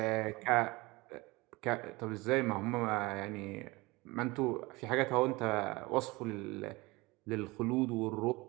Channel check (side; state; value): left; quieter; 22.9 dB